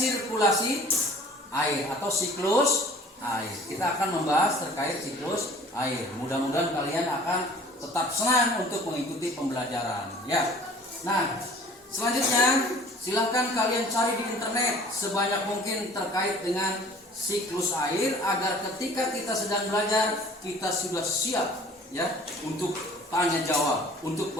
air atau siklus air. Kita akan membahas terkait siklus air. Mudah-mudahan kalian akan tetap senang untuk mengikuti pembelajaran ya. Nah, selanjutnya silahkan kalian cari di internet sebanyak mungkin terkait dengan siklus air agar ketika kita sedang belajar kita sudah siap ya untuk tanya jawab, untuk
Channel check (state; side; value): normal; both; correlation 0.50